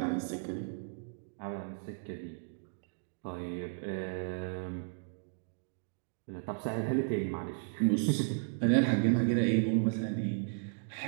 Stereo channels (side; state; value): left; silent; digital silence